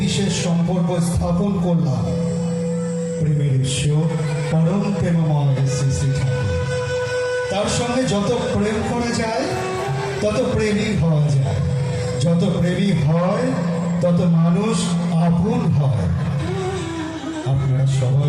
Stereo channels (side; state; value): both; identical; correlation 1.00